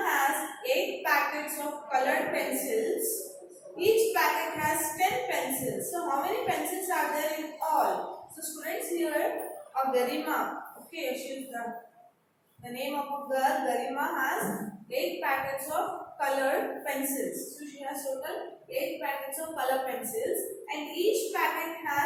8 packets of colored pencils. Each packet has 10 pencils. So how many pencils are there in all? So students, here of Garima, okay, she is the name of a girl. Garima has 8 packets of colored pencils. So she has total 8 packets of color pencils and each packet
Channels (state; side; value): identical; both; correlation 1.00